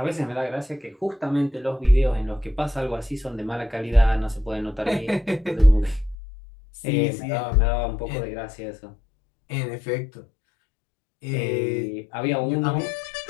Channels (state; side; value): drops out; right; at 6.2 s